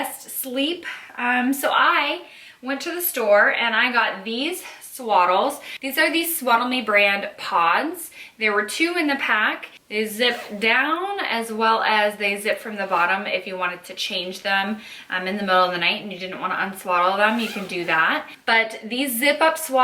sleep. So I went to the store and I got these swaddles. These are the Swaddle Me brand pods. There were 2 in the pack. They zip down as well as they zip from the bottom. If you wanted to change them in the middle of the night and you didn't want to unswaddle them, you can do that. But these zip up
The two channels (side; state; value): both; identical; correlation 1.00